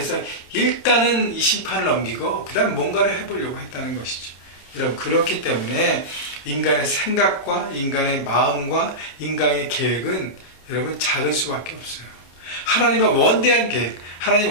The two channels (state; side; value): late; right; 28 ms